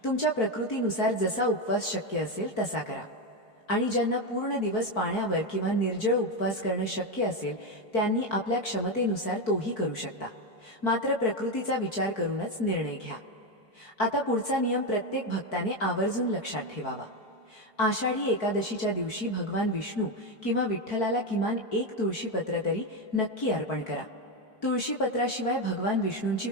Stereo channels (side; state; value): right; late; 4.6 ms